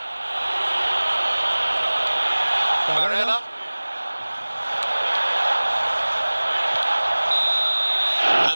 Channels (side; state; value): both; inverted; correlation -1.00